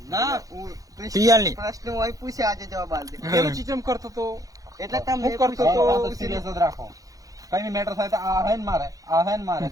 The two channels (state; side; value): late; left; 0.17 ms